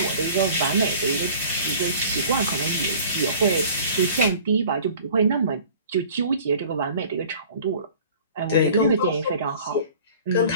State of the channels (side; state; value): both; inverted; correlation -0.47